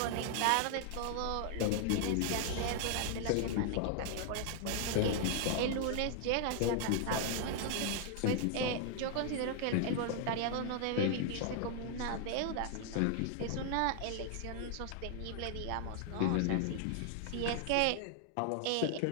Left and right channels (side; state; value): both; different; correlation 0.00